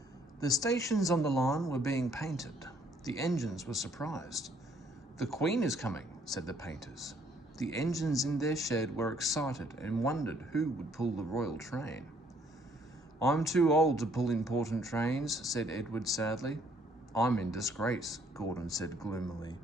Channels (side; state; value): both; normal; correlation 0.64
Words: The stations on the line were being painted. The engines were surprised. "The Queen is coming," said the painters. The engines in their shed were excited and wondered who would pull the royal train. "I'm too old to pull important trains," said Edward sadly. "I'm in disgrace," Gordon said gloomily.